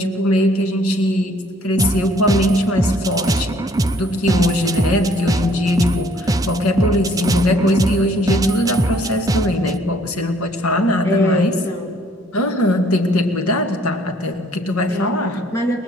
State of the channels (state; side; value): normal; both; correlation 0.61